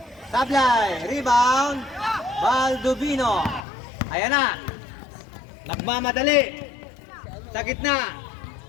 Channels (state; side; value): drops out; right; at 3.7 s